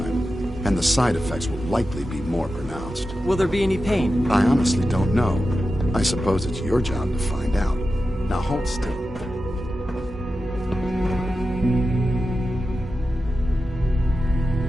and the side effects will likely be more pronounced. Will there be any pain? I honestly don't know. I suppose it's your job to find out. Now hold still.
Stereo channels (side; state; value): both; normal; correlation 0.92